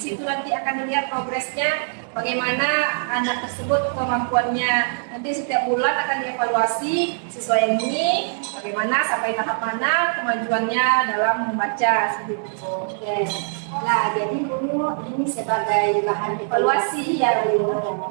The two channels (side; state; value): left; silent; digital silence